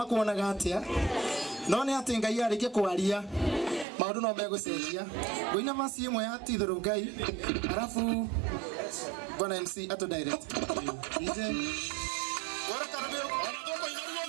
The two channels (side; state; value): left; drops out; at 3.9 s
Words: atĩa no nĩ atĩ Ngai arĩkia kwaria maũndũ no megũcenjia ngũina verse imwe ya titherũ Ngai arabu Bwana MC ato direct DJ Ora carabeo anatoko